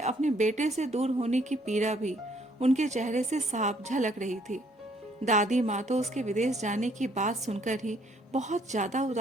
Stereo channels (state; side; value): normal; both; correlation 0.65